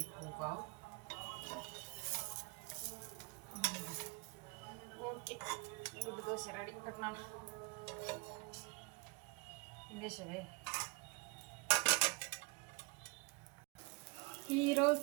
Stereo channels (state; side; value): quieter; left; 28.4 dB